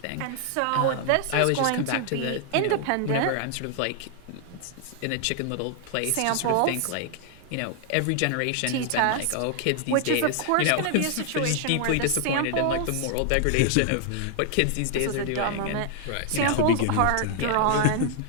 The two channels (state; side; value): different; both; correlation 0.00